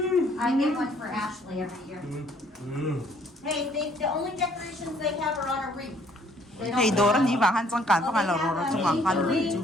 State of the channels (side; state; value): both; normal; correlation 0.62